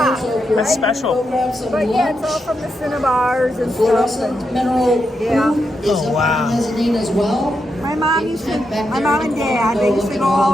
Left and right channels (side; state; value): both; normal; correlation 0.84